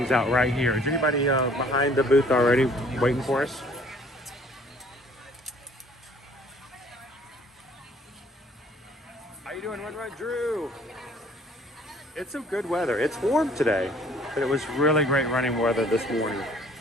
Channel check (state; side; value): normal; both; correlation 0.57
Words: out right here. Is anybody behind the booth already waiting for us? How you doing, Run Drew? It's some good weather. It's warm today, but it was really great running weather this morning.